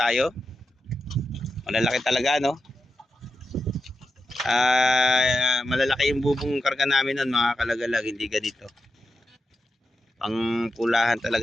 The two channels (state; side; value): normal; both; correlation 0.89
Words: Malalaki talaga, no? Malalaki yung bubong karga namin nun mga kalagalag, hindi ganito. Pang pulahan